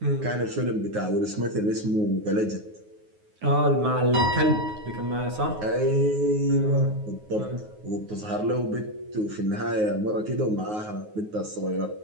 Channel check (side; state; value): left; late; 9.5 ms